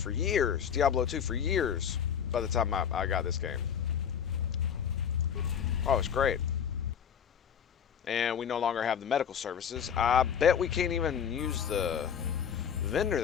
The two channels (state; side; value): quieter; right; 8.0 dB